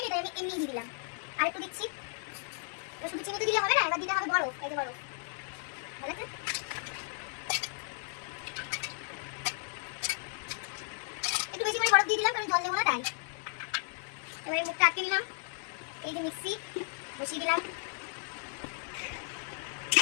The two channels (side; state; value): right; silent; 55 dB below the other